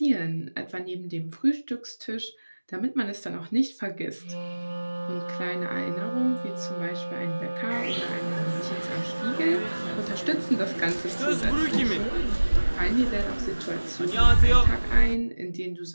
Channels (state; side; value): inverted; both; correlation -1.00